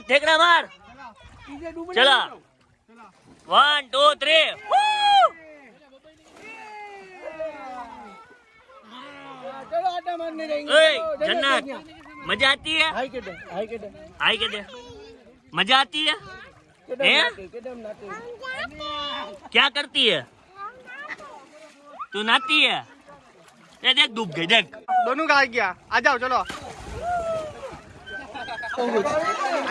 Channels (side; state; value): both; identical; correlation 1.00